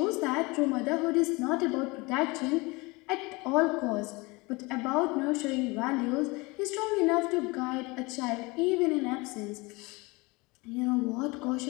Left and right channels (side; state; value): right; quieter; 25.0 dB